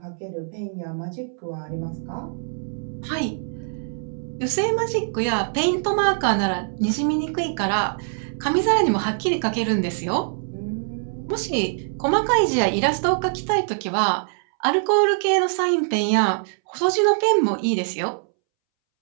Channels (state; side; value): silent; left; 63 dB below the other